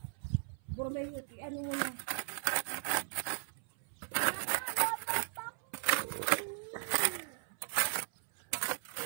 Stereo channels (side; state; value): left; silent; 53 dB below the other